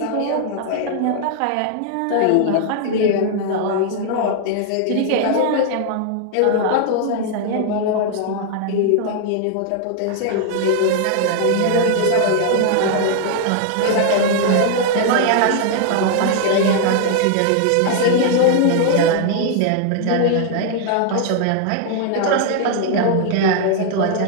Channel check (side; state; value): both; different; correlation 0.00